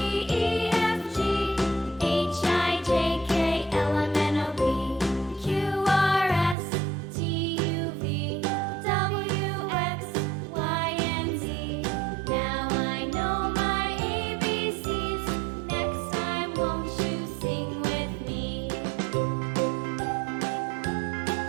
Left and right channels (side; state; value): left; drops out; at 6.6 s